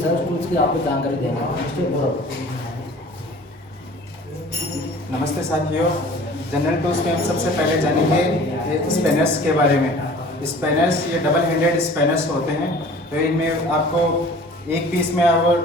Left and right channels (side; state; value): both; normal; correlation 0.46